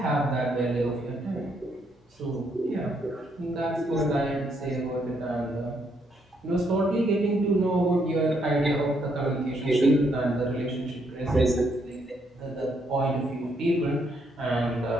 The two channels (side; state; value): both; normal; correlation 0.74